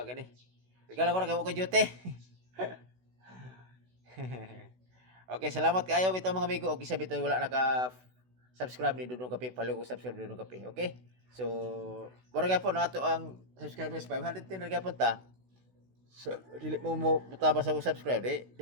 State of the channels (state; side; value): late; left; 16 ms